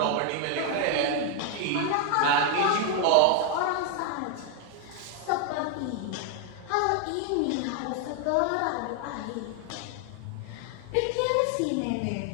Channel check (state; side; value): different; both; correlation 0.01